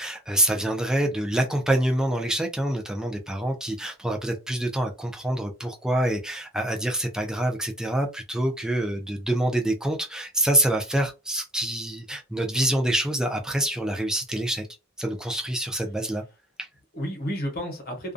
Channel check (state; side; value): normal; both; correlation 0.60